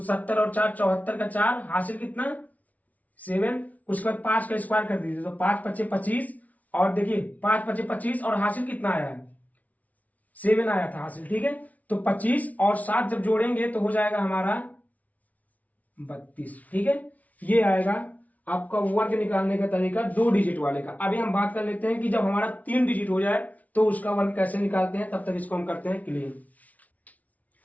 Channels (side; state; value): right; late; 0.071 ms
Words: 70 और 4 74 का 4 हासिल कितना 7, उसके बाद 5 का स्क्वायर कर दीजिए, तो 5 पचे 25 और देखिए 5 पचे 25 और हासिल कितना आया है 7 आया था हासिल, ठीक है। तो 25 और 7 जब जोड़ेंगे तो हो जाएगा हमारा 32, ठीक है। ये आएगा आपका वर्ग निकालने का तरीका 2 डिजिट वाले का। अभी हम बात कर लेते हैं कि जब हमारा 3 डिजिट हो जाए तो उसका वर्ग कैसे निकालते हैं, तब तक इसको हम करते हैं क्लियर।